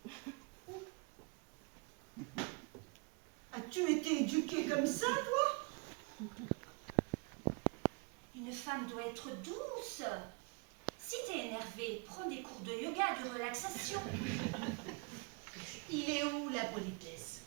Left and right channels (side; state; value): left; quieter; 32.5 dB